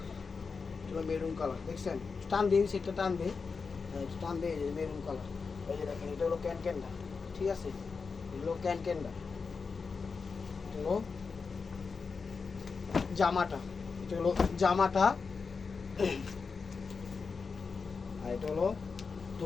এটা হলো মেরুন কালার, দেখছেন, টান দিন সেটা টান দে, টান দে, মেরুন কালার। এই যে দেখেন এটা হলো ক্যানটা, ঠিক আছে, এগুলো ক্যানটা, এটা হলো জামাটা, এটা হলো জামাটা, আর এটা হলো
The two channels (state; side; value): quieter; right; 5.0 dB